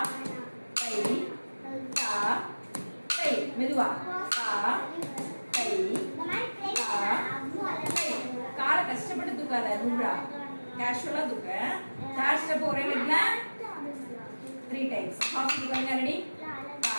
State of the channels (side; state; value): both; inverted; correlation -1.00